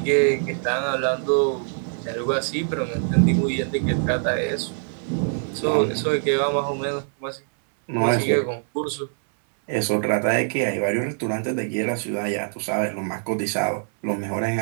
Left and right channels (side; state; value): left; silent; digital silence